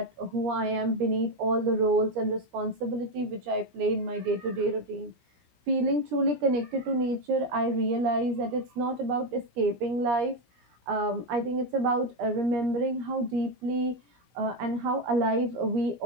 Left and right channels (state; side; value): late; left; 17 ms